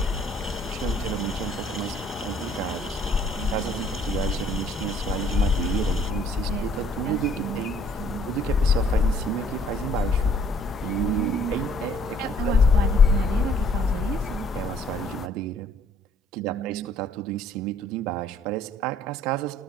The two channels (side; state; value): both; normal; correlation 0.61